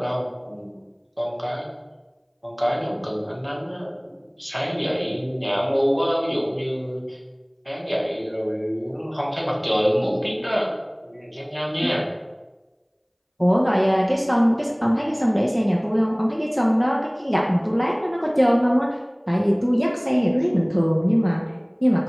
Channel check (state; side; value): identical; both; correlation 1.00